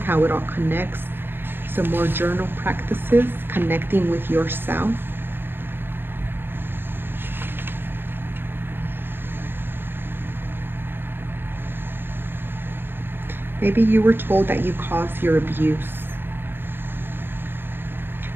how it all connects. Some more journal practices, connecting with yourself. Maybe you were told that you caused your abuse.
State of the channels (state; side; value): late; left; 0.098 ms